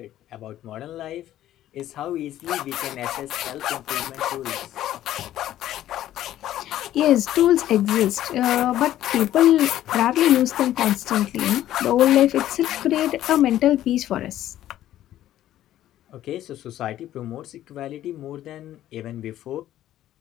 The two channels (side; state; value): right; quieter; 12.9 dB